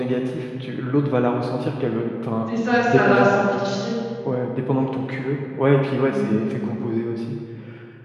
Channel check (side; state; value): both; identical; correlation 1.00